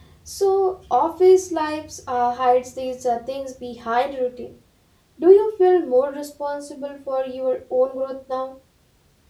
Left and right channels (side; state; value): both; identical; correlation 1.00